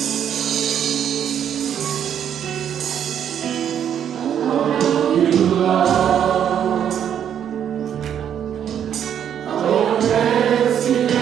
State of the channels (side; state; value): left; quieter; 9.2 dB